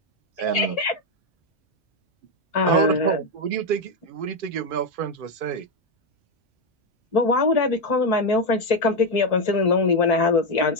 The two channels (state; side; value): normal; both; correlation 0.07